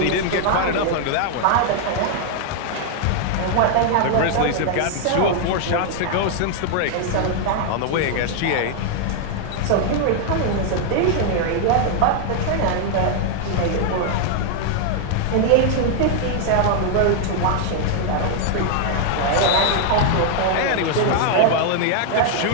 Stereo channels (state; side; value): different; both; correlation 0.00